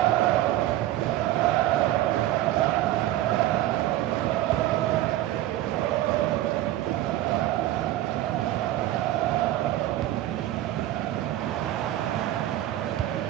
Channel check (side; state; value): left; quieter; 14.3 dB